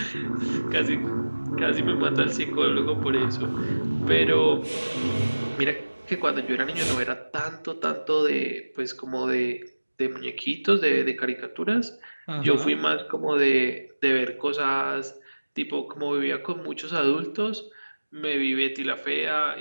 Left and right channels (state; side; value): inverted; both; correlation -1.00